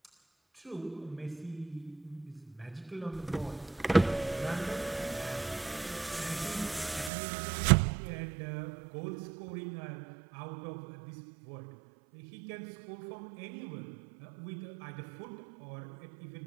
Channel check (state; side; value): drops out; left; at 7.1 s